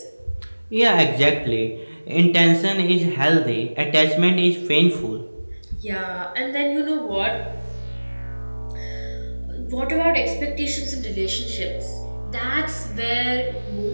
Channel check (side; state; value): both; inverted; correlation -1.00